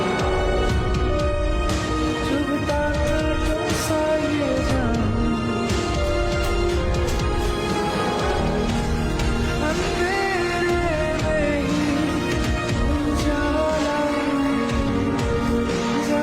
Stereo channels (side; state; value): both; identical; correlation 1.00